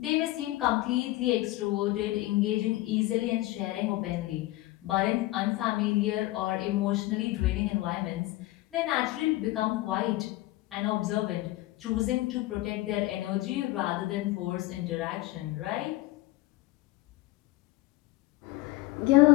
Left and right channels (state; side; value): quieter; right; 18.3 dB